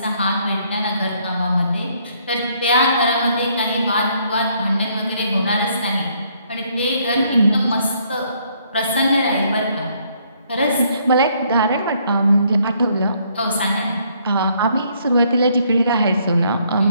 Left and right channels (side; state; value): both; inverted; correlation -0.68